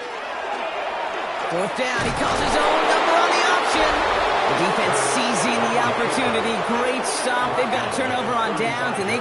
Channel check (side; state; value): both; identical; correlation 1.00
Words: 4th down, he calls his own number on the option. The defense seizing the opportunity. Great stop. They've got a turnover on downs, and they